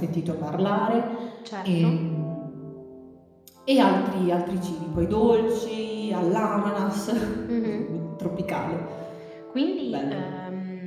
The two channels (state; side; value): identical; both; correlation 1.00